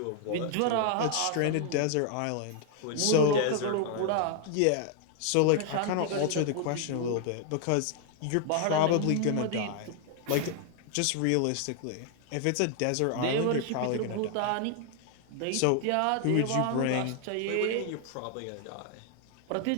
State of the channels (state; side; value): different; both; correlation 0.00